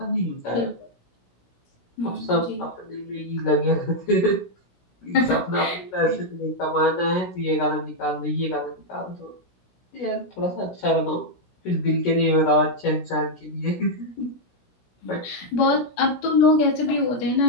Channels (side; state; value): right; late; 17 ms